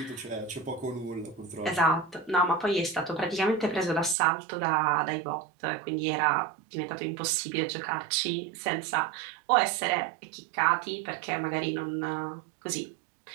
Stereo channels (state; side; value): drops out; left; at 4.2 s